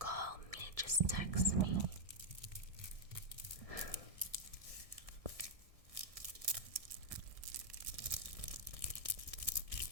me, just text me.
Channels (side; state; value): left; late; 1.6 ms